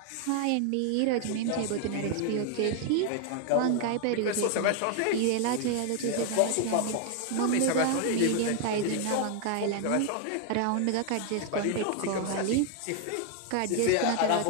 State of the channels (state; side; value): different; both; correlation 0.00